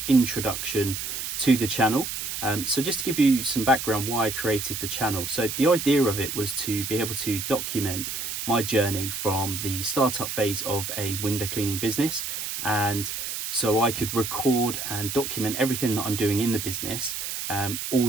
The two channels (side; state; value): right; noise; hiss, 5 dB below the sound